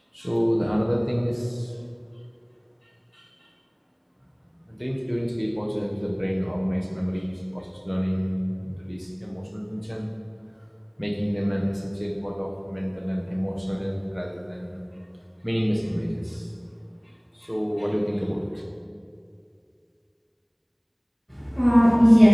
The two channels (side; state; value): both; identical; correlation 1.00